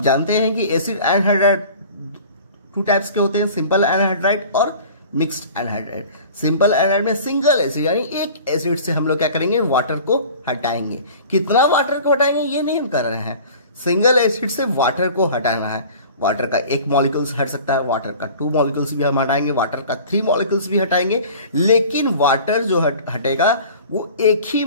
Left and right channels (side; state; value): both; inverted; correlation -0.44